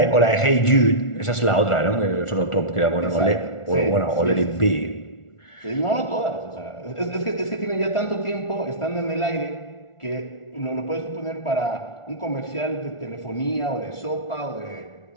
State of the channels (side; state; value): right; late; 1.4 ms